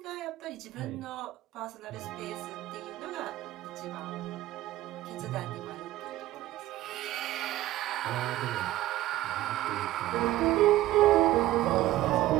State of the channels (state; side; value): quieter; left; 15.5 dB